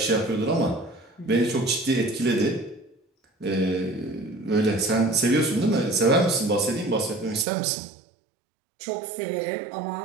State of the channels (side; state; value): left; drops out; at 7.5 s